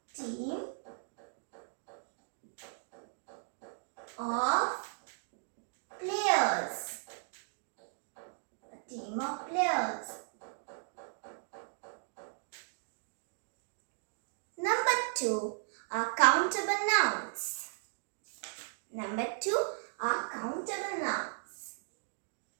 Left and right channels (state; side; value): silent; left; digital silence